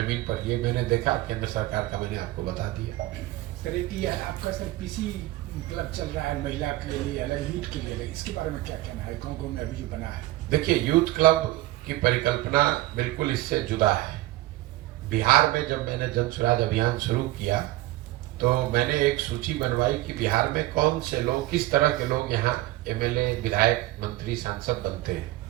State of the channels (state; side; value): quieter; left; 17.5 dB